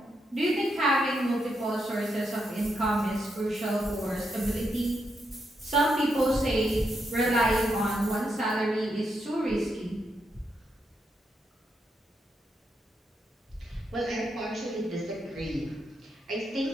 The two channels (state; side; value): normal; both; correlation 0.81